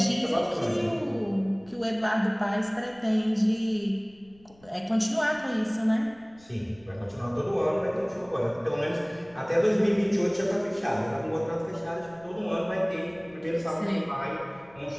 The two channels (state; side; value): noise; left; rumble, 28 dB below the sound